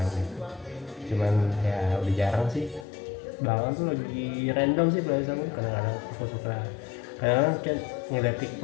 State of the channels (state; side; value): drops out; right; at 2.9 s